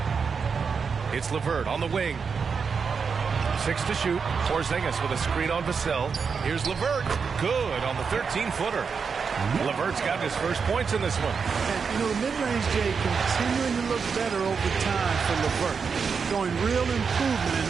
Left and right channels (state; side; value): quieter; left; 5.7 dB